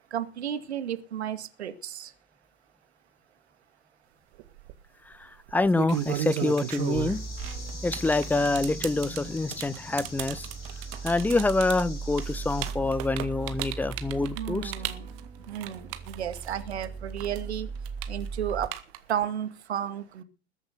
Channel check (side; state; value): both; normal; correlation 0.68